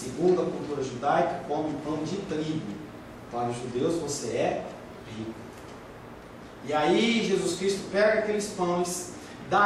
a cultura judaica, come pão de trigo. Para os judeus você é rico. E aí Jesus Cristo pega aqueles pães,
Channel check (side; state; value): both; identical; correlation 1.00